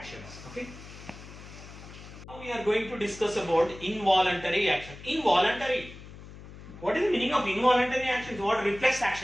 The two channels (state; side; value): noise; left; hum, 16 dB below the sound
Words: Okay, now we are going to discuss about involuntary action. Involuntary, what is the meaning of involuntary actions? What? Reflex